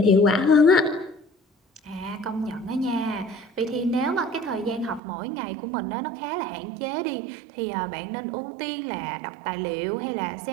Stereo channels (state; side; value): drops out; left; at 5.0 s